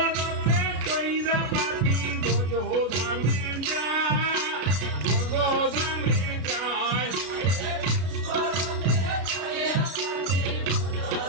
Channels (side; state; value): left; late; 33 ms